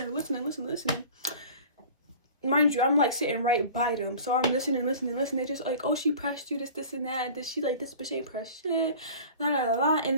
there listening. Mind you, I'm like sitting right by them. So I'm listening. They just like, oh, she pressed you, this and that. She like, this bitch ain't pressed shit. La, la, la, la. And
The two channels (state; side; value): inverted; both; correlation -0.41